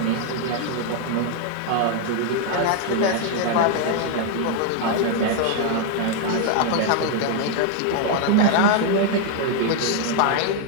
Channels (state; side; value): different; both; correlation 0.00